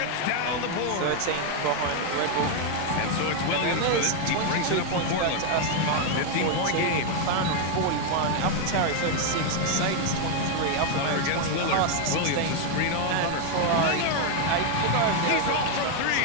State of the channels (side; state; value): both; different; correlation 0.01